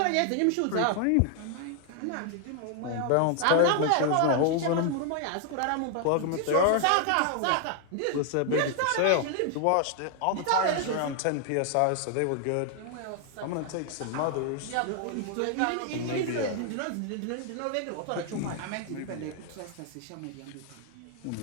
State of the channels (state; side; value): different; both; correlation 0.00